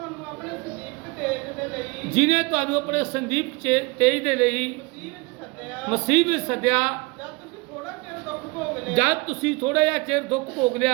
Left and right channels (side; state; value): left; quieter; 26.9 dB